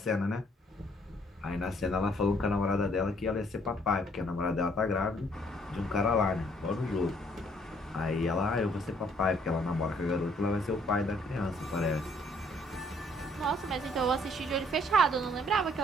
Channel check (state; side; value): normal; both; correlation 0.64